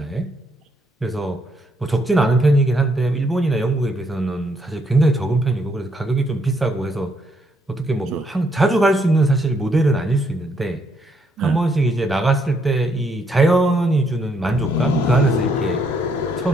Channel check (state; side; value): normal; both; correlation 0.72